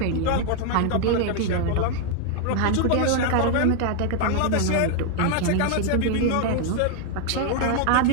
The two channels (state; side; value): different; both; correlation 0.00